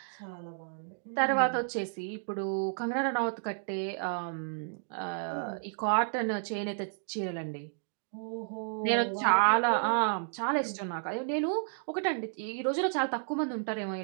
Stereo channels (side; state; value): left; silent; digital silence